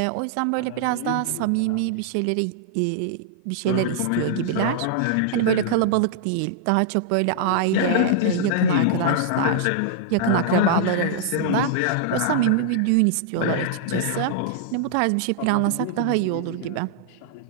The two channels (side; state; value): both; different; correlation -0.01